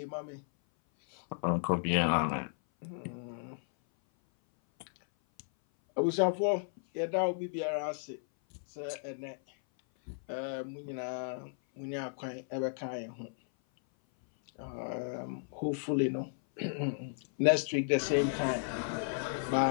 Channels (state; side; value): silent; right; 55 dB below the other